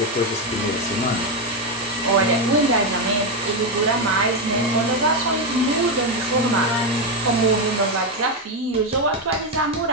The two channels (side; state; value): both; normal; correlation 0.07